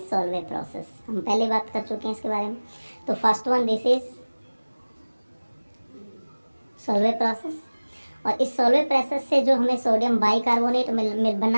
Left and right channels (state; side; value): inverted; both; correlation -1.00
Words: process. हम पहले बात कर चुके हैं इसके बारे में। तो first one this is Solvay process, और इस सॉल्वे प्रोसेस से जो हमें सोडियम बाइकार्बोनेट मिल